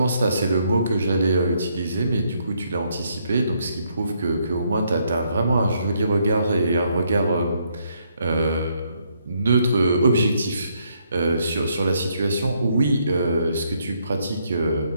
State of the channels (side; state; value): both; inverted; correlation -0.73